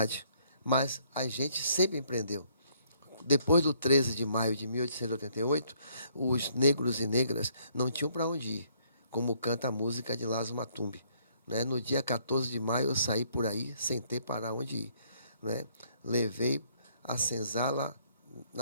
mas a gente sempre empreendeu. Depois do 13 de maio de 1888, os negros e negras não tinham para onde ir, como canta a música de Lázaro Matumbi, né? No dia 14 de maio, eu saí por aí sem ter para onde ir, né? Levei a senzala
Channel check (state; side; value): inverted; both; correlation -0.67